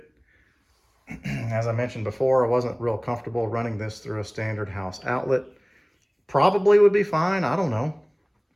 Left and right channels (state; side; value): identical; both; correlation 1.00